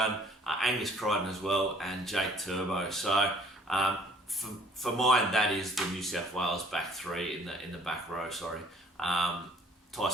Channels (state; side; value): normal; both; correlation 0.57